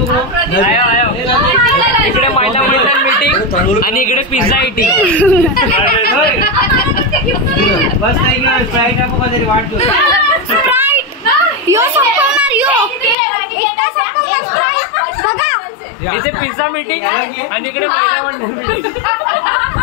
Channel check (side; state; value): right; drops out; at 13.2 s